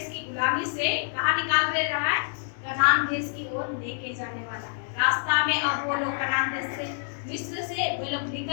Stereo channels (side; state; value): right; silent; digital silence